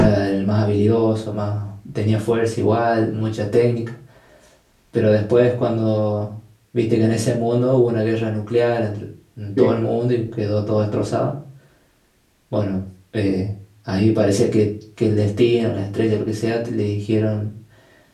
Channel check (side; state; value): both; identical; correlation 1.00